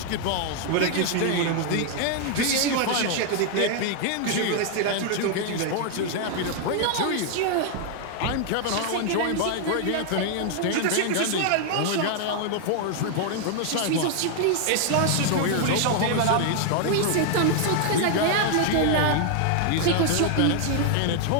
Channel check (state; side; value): different; both; correlation 0.00